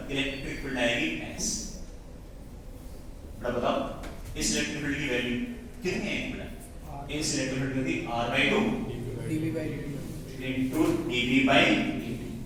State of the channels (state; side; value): identical; both; correlation 1.00